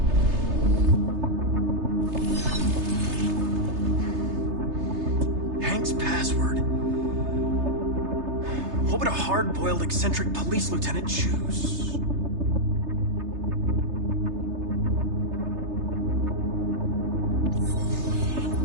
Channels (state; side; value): late; left; 3.3 ms